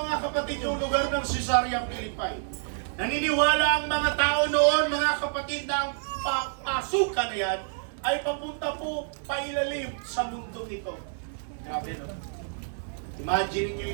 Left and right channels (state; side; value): silent; left; digital silence